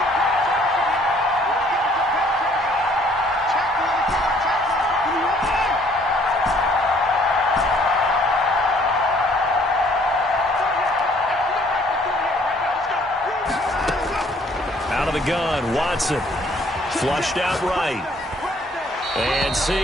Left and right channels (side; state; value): both; normal; correlation 0.61